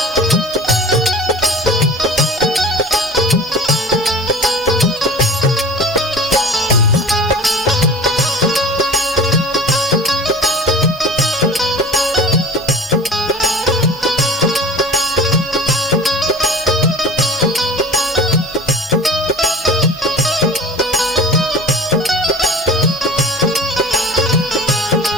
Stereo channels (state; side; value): normal; both; correlation 0.40